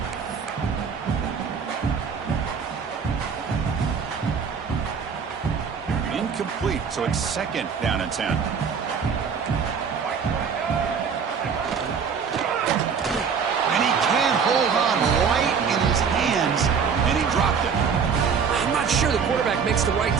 Incomplete, so it's 2nd down and 10. Hold on right in his hands, and he dropped it. I'm not sure the quarterback makes the right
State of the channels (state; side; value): quieter; left; 6.3 dB